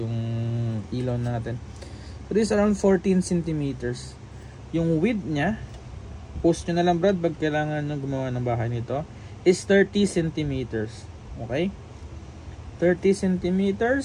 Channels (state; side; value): identical; both; correlation 1.00